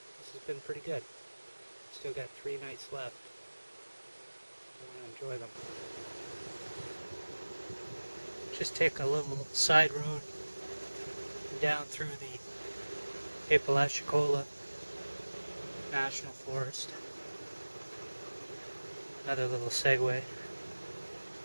has been pretty good. Still got 3 nights left. I want to enjoy them. Just take a little side road down through the Apalachicola National Forest. Another little segue.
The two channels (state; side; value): inverted; both; correlation -1.00